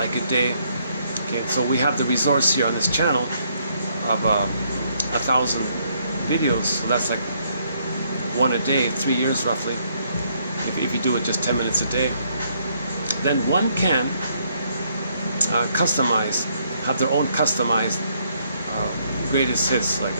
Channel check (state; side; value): inverted; both; correlation -0.70